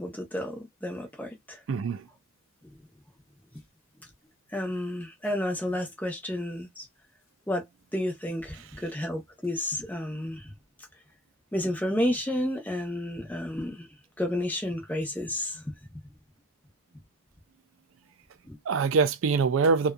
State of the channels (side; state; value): both; normal; correlation 0.38